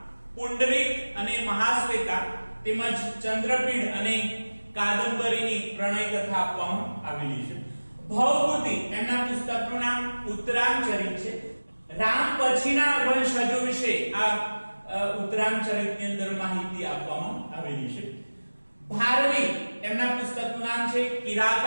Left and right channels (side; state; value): both; inverted; correlation -1.00